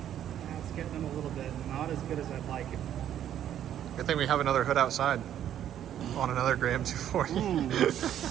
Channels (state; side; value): quieter; left; 10.6 dB